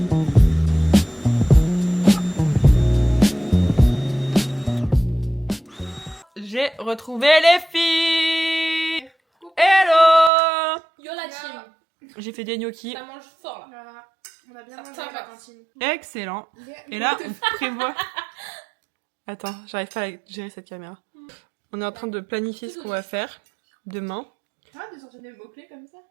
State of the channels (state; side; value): drops out; left; at 10.3 s